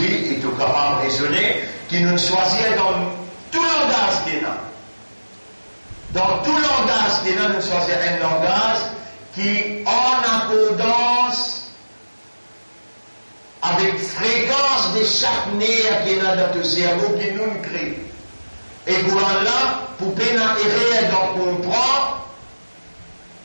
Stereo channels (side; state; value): both; inverted; correlation -1.00